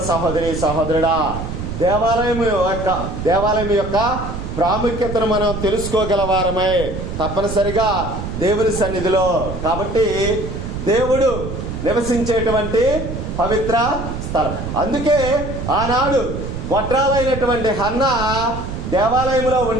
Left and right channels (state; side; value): noise; right; rumble, 6 dB below the sound